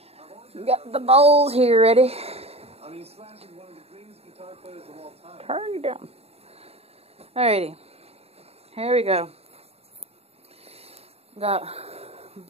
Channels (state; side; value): late; left; 0.29 ms